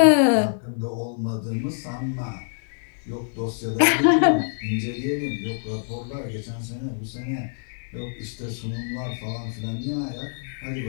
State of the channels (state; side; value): silent; right; digital silence